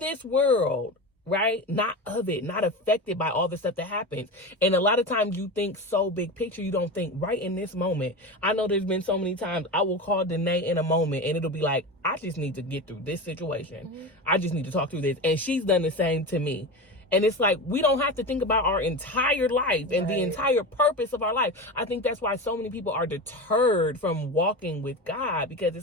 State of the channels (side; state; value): both; normal; correlation 0.25